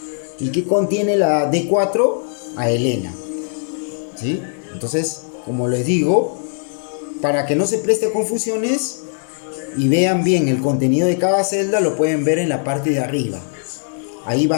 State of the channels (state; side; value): silent; right; digital silence